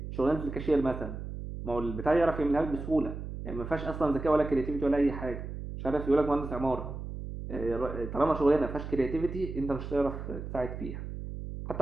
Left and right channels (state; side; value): noise; right; hum, 8 dB below the sound